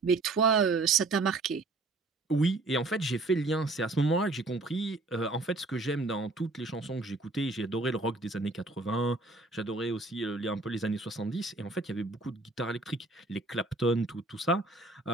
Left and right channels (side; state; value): left; quieter; 3.2 dB